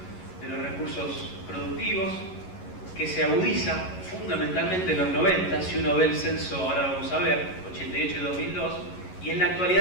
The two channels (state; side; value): late; right; 11 ms